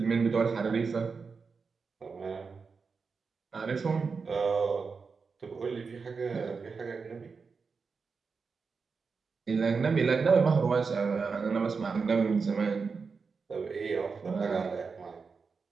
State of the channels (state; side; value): quieter; left; 5.0 dB